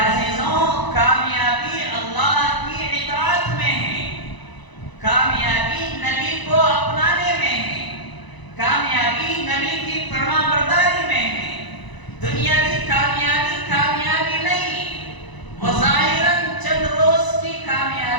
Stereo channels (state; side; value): late; right; 1.0 ms